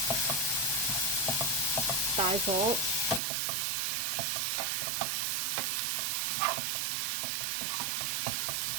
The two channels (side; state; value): left; drops out; at 3.2 s